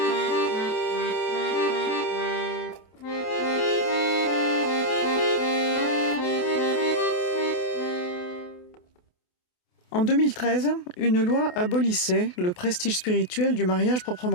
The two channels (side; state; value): right; late; 28 ms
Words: En 2013, une loi abolissait le prestige spirituel du mariage